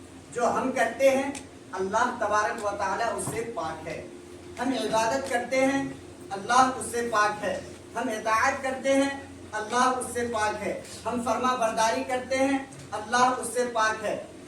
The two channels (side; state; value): both; identical; correlation 1.00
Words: جو ہم کرتے ہیں اللہ تبارک و تعالیٰ اس سے پاک ہے، ہم عبادت کرتے ہیں اللہ اس سے پاک ہے، ہم اطاعت کرتے ہیں اللہ اس سے پاک ہے، ہم فرما برداری کرتے ہیں اللہ اس سے پاک ہے،